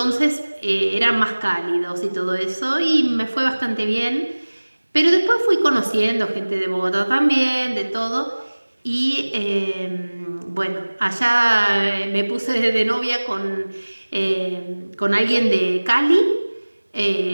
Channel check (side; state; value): both; inverted; correlation -1.00